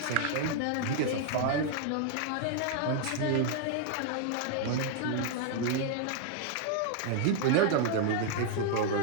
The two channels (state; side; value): different; both; correlation 0.00